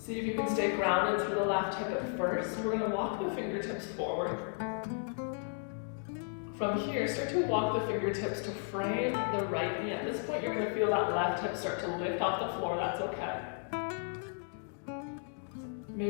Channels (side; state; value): right; silent; 55 dB below the other